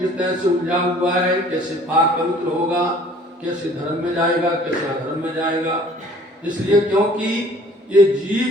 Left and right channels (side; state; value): both; normal; correlation 0.53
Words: तरह से उलझा हुआ है कैसे पाक पवित्र होगा कैसे धर्म में जाएगा कैसे अधर्म में जाएगा। इसलिए क्योंकि ये